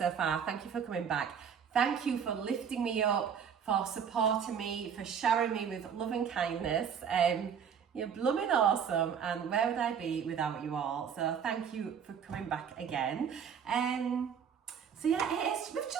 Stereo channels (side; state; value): left; quieter; 7.4 dB